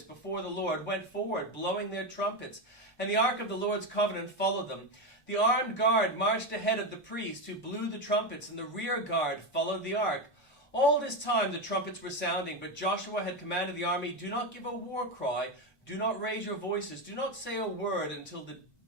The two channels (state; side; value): normal; both; correlation 0.13